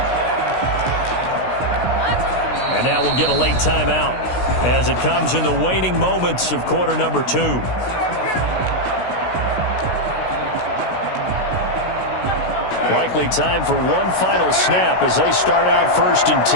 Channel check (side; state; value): right; late; 16 ms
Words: And now we'll get a late timeout as it comes in the waning moments of quarter number 2. Likely time for one final snap as they start out 1st and